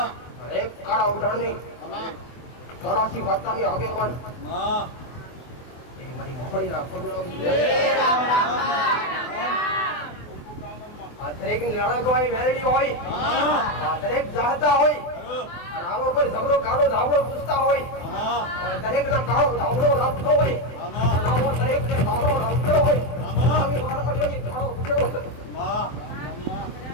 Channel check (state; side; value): late; right; 23 ms